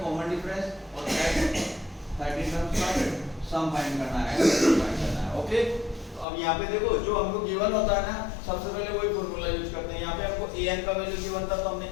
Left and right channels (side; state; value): right; drops out; at 6.2 s